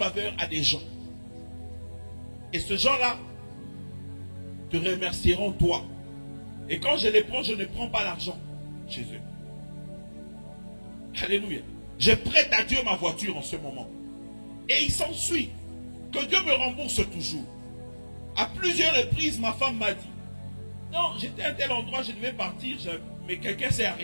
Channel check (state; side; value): inverted; both; correlation -1.00